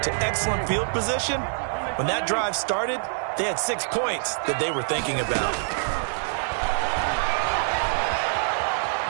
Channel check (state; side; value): silent; left; digital silence